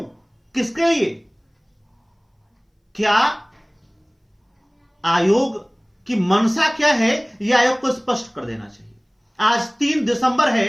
किसके लिए? क्या आयोग की मंशा क्या है, यह आयोग को स्पष्ट कर देना चाहिए। आज 3 दिसंबर है,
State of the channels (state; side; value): identical; both; correlation 1.00